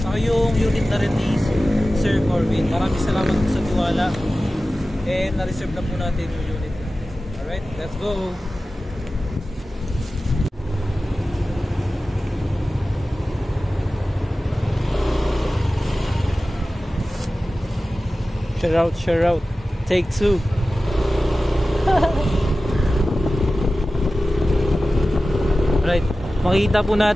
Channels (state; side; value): normal; both; correlation 0.95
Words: Saka yung unit na rin ni Sir Corbin. Maraming salamat po sa tiwala. And na-reserve na po natin yung unit natin. Alright, let's go! Share out. Take 2. Right. Makita po